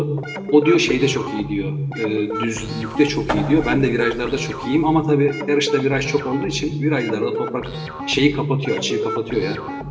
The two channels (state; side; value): identical; both; correlation 1.00